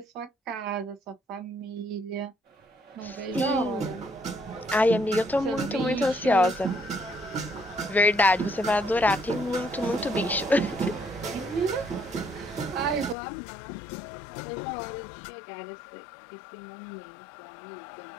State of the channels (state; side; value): drops out; right; at 13.2 s